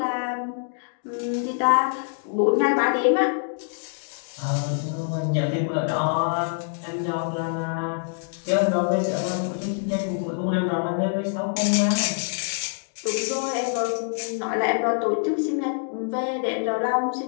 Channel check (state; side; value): silent; right; digital silence